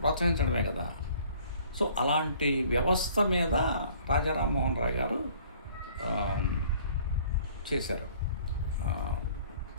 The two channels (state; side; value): inverted; both; correlation -0.55